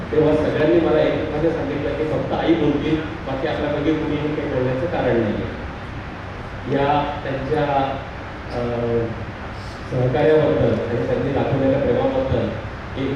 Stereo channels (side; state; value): both; identical; correlation 1.00